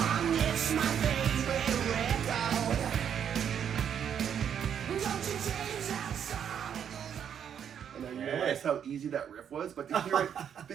It's my favorite record. Don't you change that song? And I realized how easy that riff was, but to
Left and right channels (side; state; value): left; quieter; 8.5 dB